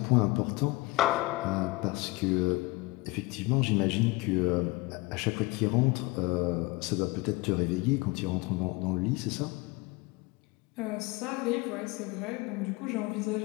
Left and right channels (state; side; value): quieter; right; 22.7 dB